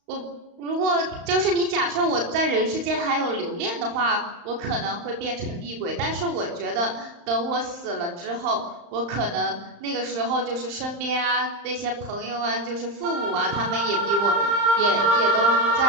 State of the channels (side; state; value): left; late; 35 ms